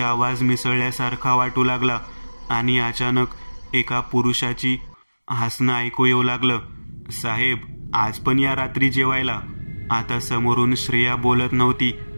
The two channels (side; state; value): both; inverted; correlation -1.00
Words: मिसळल्यासारखा वाटू लागला आणि अचानक एका पुरुषाची हसणं ऐकू येऊ लागलं. साहेब, आज पण या रात्री जेवायला? आता समोरून श्रेया बोलत नव्हती,